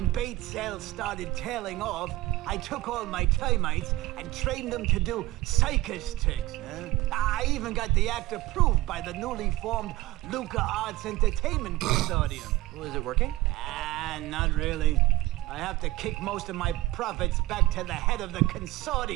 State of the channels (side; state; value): left; quieter; 18.1 dB